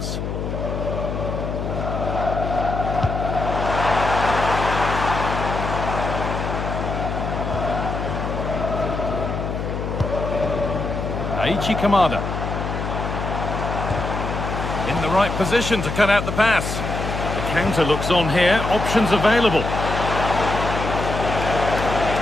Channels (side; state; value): left; noise; hum, 4 dB below the sound